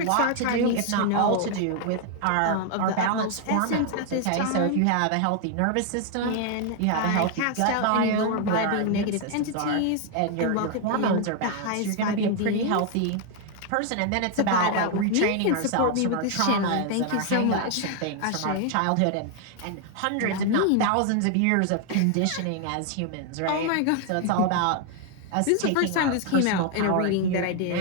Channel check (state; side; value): different; both; correlation 0.00